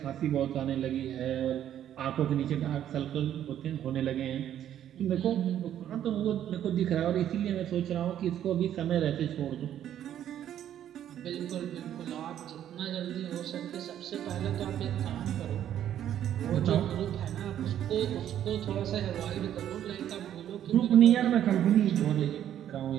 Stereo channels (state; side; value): quieter; left; 10.8 dB